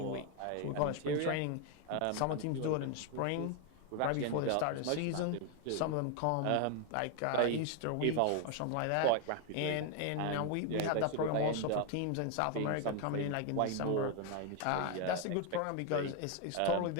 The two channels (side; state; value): both; different; correlation 0.01